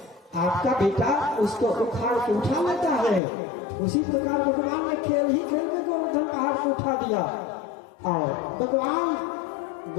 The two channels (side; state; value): right; drops out; at 3.2 s